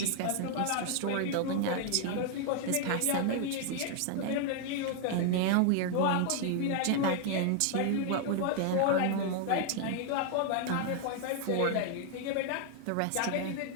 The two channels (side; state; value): both; different; correlation 0.00